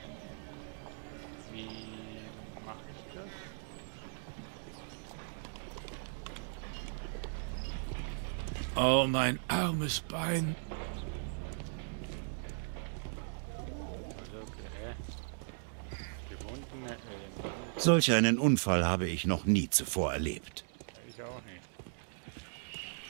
Wie mache ich das? Oh, mein armes Bein. Also, okay. Gebundene Elemente. Solch einen Unfall habe ich noch nie zuvor erlebt. Ich auch nicht.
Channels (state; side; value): silent; left; digital silence